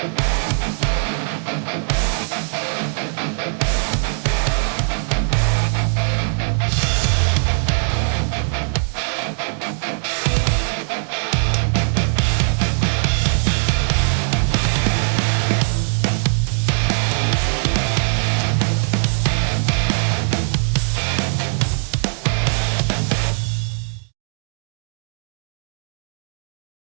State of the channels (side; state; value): left; silent; digital silence